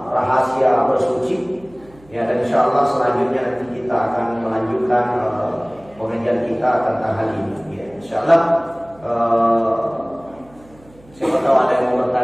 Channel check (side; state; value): right; noise; hum, 26 dB below the sound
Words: rahasia bersuci. Ya, dan insya Allah selanjutnya nanti kita akan melanjutkan pengajian kita tentang hal ini. Ya, insya Allah siapa tahu ada yang mau